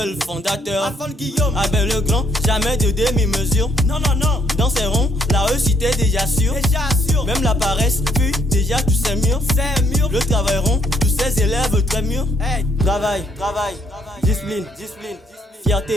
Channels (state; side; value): normal; both; correlation 0.70